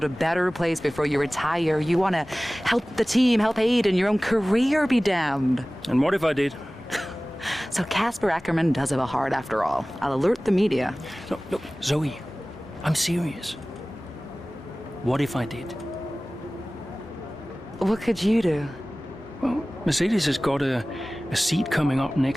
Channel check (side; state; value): both; normal; correlation 0.98